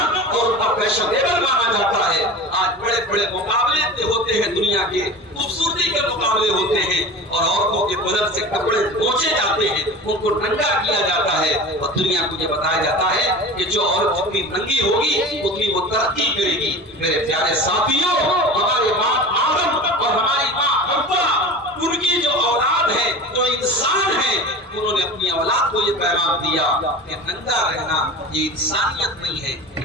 اور اتنا فیشنیبل مانا جاتا ہے. آج بڑے بڑے مقابلے ہوتے ہیں, دنیا کے خوبصورتی کے مقابلے ہوتے ہیں اور عورتوں کے بدن سے کپڑے پوچھے جاتے ہیں, ان کو ننگا کیا جاتا ہے اور دنیا کو یہ بتایا جاتا ہے کہ جو عورت جتنی ننگی ہوگی اتنی وہ ترقی کرے گی. میرے پیارے ساتھیوں, ہمارے باپ آدم اور ہماری ماں حوا, ان کی جو اولاد ہے, جو انسان ہے, انہوں نے اپنی اولاد کو یہ پیغام دیا کہ ننگا رہنا یہ انسانیت نہیں ہے,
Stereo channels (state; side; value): normal; both; correlation 0.34